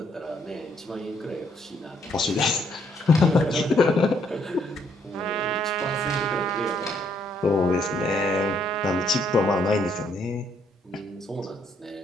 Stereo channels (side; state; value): both; normal; correlation 0.69